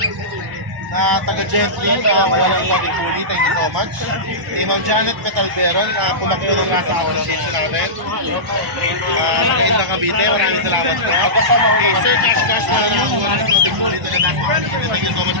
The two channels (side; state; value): left; late; 1.0 ms